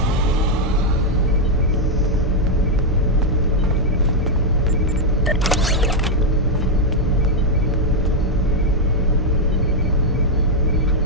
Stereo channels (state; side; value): normal; both; correlation 0.00